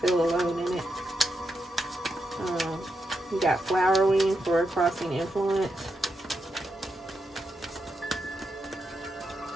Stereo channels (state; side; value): normal; both; correlation 0.85